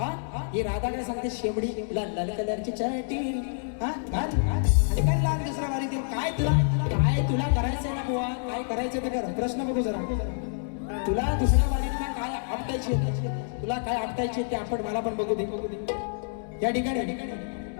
ही राधा काय सांगते शेमडी लाल लाल कलरची चटी हा आणि काय लाल दुसरा वारी ते काय तुला करायचंय ना बुवा काय करायचं ते कर प्रश्न बघू जरा तुला दुसऱ्या वारीतला काय आपटायची तुला काय आपटायची ते आपण मला पण बघू दे या ठिकाणी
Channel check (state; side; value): silent; right; digital silence